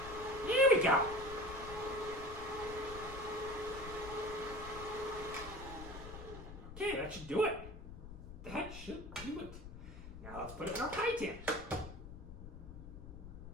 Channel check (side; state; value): left; noise; rumble, 12 dB below the sound